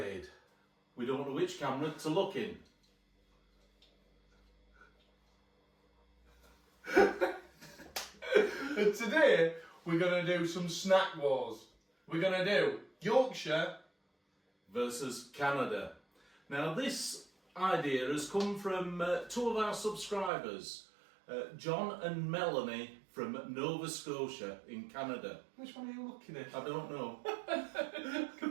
We don't know which camera to look in. And today we're going to do some snack wars. We're going to do Yorkshire Versus Canada. Now this idea has come from two of our subscribers, John and Melanie from Nova Scotia in Canada. Which one are you looking at? I don't know.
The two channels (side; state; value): left; drops out; at 20.3 s